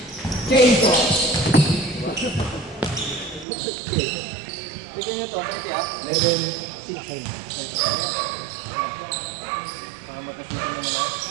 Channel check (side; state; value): left; drops out; at 3.5 s